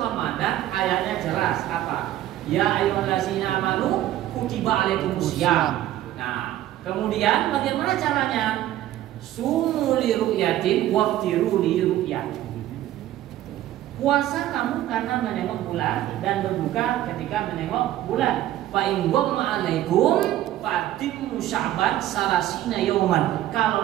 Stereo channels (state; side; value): quieter; left; 13.5 dB